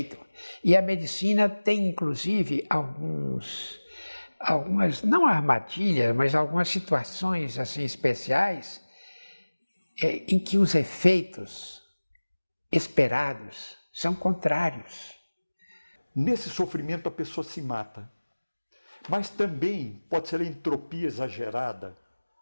E a medicina tem, inclusive, algumas, não armadilhas, mas algumas situações assim especiais em que os efeitos esperados são contrários. Nesse sofrimento a pessoa se mata. Mas também pode ser a entropia exagerada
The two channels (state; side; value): inverted; both; correlation -1.00